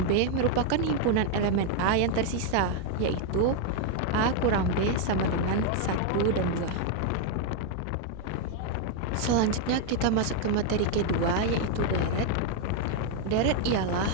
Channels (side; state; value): both; different; correlation 0.01